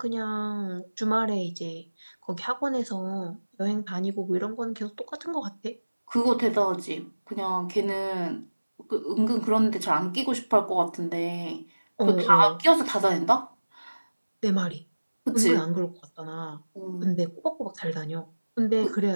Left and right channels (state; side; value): inverted; both; correlation -1.00